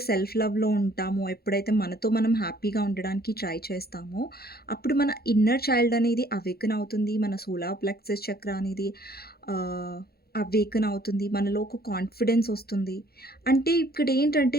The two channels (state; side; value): late; right; 0.45 ms